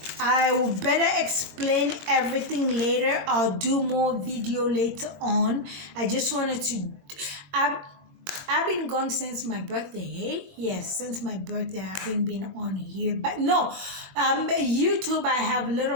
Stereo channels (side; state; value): left; late; 21 ms